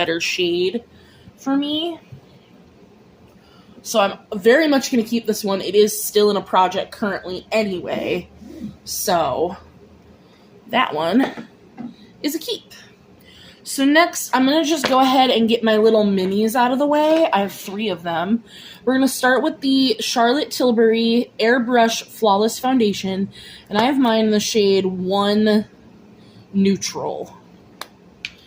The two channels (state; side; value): identical; both; correlation 1.00